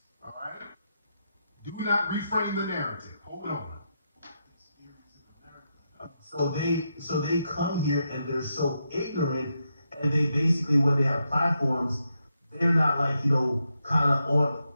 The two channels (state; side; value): inverted; both; correlation -0.83